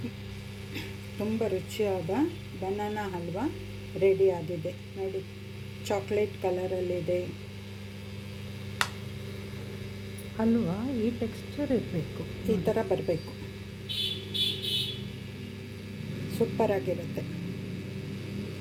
ತುಂಬ ರುಚಿಯಾದ ಬನಾನಾ ಹಲ್ವಾ ರೆಡಿ ಆಗಿದೆ ನೋಡಿ. ಚಾಕ್ಲೇಟ್ ಕಲರಲ್ಲಿದೆ. ಹಲ್ವಾ ಈ ಟೆಕ್ಸ್ಚರ್ ಇರಬೇಕು, ಈ ಥರ ಬರಬೇಕು. ಸೂಪರಾಗಿರುತ್ತೆ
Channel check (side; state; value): both; identical; correlation 1.00